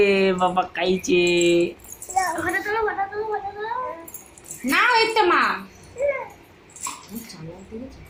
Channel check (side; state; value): both; identical; correlation 1.00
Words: বাবা খাইছে। না ওই তো মা